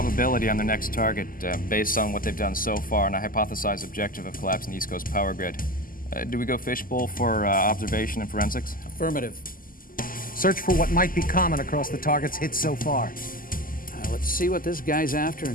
on the next target based on what they've done so far and a hypothesized objective of collapsing the East Coast power grid. Do we go fishbowl for observation and forensics? Affirmative. Search for what might be common across the targets hit so far. Let's see what this guy's after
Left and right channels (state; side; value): late; right; 0.41 ms